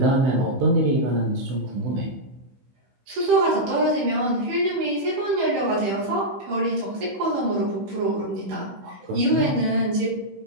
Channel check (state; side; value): late; left; 15 ms